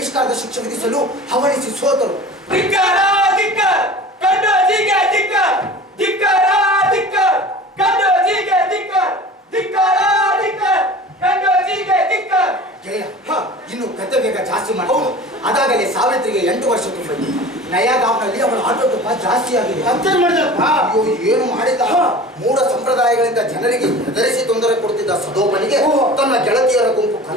ಶಿಕ್ಷೆ ವಿಧಿಸಲು ಹವಣಿಸಿ ಸೋತರು. ಇನ್ನು ಕತೆ ಬೇಗ ಜಾಸ್ತಿ ಮಾಡೋದು. ಅದಾಗಲೇ ಸಾವಿತ್ರಿಗೆ 8 ವರ್ಷ ತುಂಬಿತು. ನಯಾಗಾವ್ನಲ್ಲಿ ಅವಳ ಆಟೋಟೋಪ ಜಾಸ್ತಿ ಆಗಿದೆ. ಅಯ್ಯೋ, ಏನು ಮಾಡಿದ? ಮೂಢ ಸಂಪ್ರದಾಯಗಳಿಂದ ಜನರಿಗೆ ಹೆದರಿಸಿ ತೊಂದರೆ ಕೊಡ್ತಿದ್ದ ಸದೋಪನಿಗೆ ತನ್ನ ಗೆಳತಿಯರ ಗುಂಪು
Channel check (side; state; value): both; normal; correlation 0.39